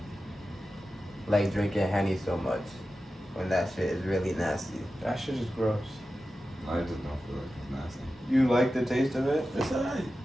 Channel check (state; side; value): normal; both; correlation 0.93